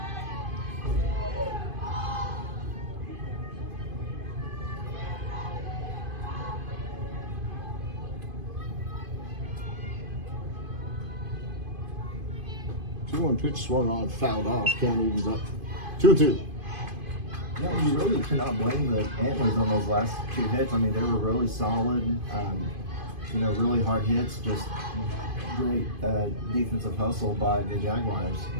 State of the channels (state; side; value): late; left; 2.5 ms